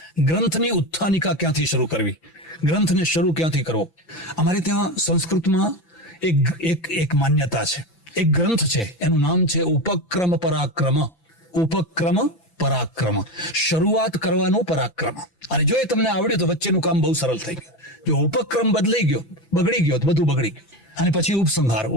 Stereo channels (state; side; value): late; right; 6.2 ms